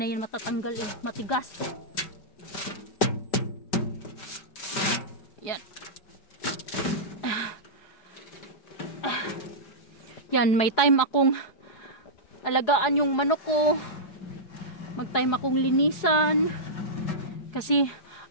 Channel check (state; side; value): late; right; 4.8 ms